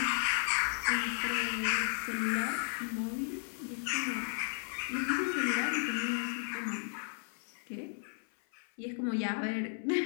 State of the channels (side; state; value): right; silent; 55 dB below the other